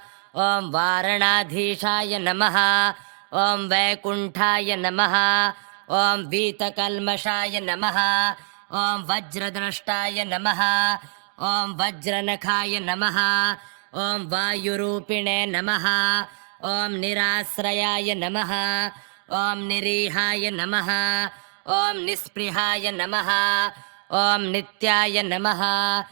ॐ वारणाधीशाय नमः ॐ वैकुण्ठाय नमः ॐ वीतकल्मषाय नमः ॐ वज्रद्रष्टाय नमः ॐ वज्रनखाय नमः ॐ वायुरूपिणे नमः ॐ निराश्रयाय नमः ॐ निरीहाय नमः ॐ निःस्पृहाय नमः ॐ नित्याय नमः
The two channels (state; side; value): silent; left; digital silence